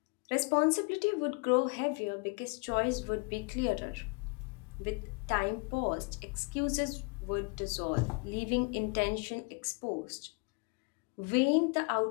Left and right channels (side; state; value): right; quieter; 32.2 dB